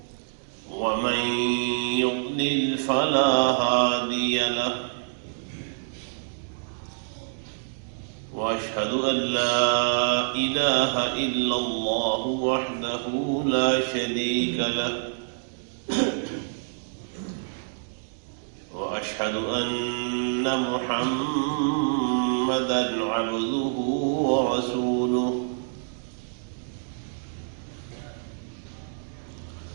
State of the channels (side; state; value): left; silent; digital silence